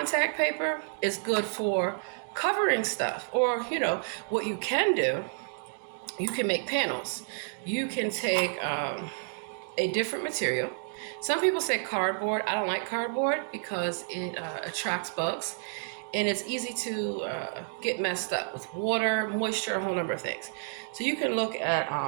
paper is good for covering stuff. Or, what you can do, you can make panels. You can take a different material. Some people say cardboard. I don't like cardboard because it attracts bugs. and it's easy to get messed up with water, moisture, a whole number of things. So you can look at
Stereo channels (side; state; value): left; silent; digital silence